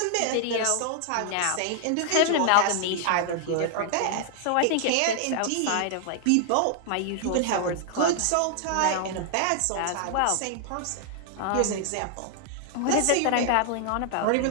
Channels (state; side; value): different; both; correlation 0.00